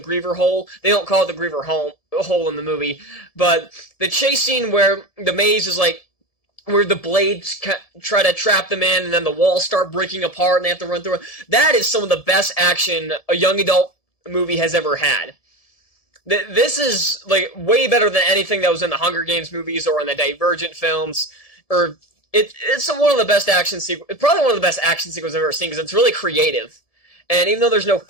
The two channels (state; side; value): late; right; 1.7 ms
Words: hole. They don't call it the Griever hole in the movie. But the chase scene where the maze is where the blades try to trap them in, and then the walls start breaking apart and they have to run through it. That is some of the best action a young adult movie has ever had. This is way better than anything that was in the Hunger Games movies or in the Divergent films. It's one of the best action sequences. Probably one of the best action sequences I've ever seen, because it's really creative. And even though there's no